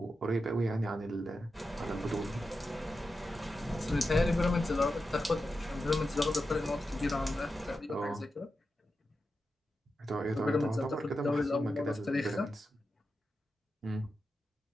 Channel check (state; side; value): normal; both; correlation 0.90